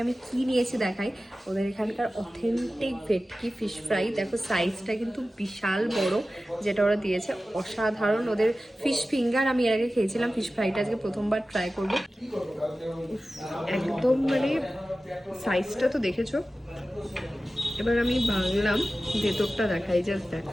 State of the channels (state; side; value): normal; both; correlation 0.95